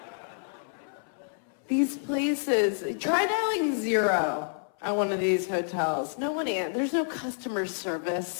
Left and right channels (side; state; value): right; silent; 59 dB below the other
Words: These places, try dialing 0 at one of these hotels. No one answers. There's no customer